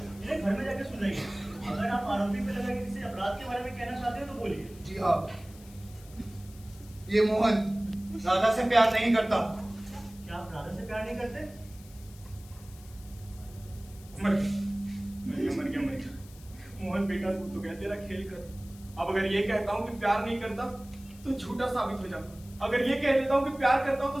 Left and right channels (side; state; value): left; noise; hiss, 22 dB below the sound